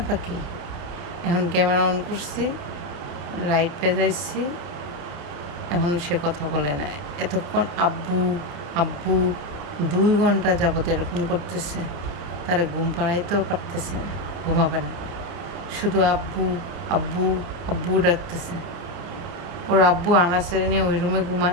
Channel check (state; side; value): late; left; 29 ms